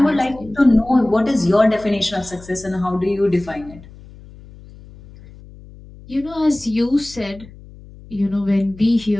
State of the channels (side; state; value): left; noise; hum, 20 dB below the sound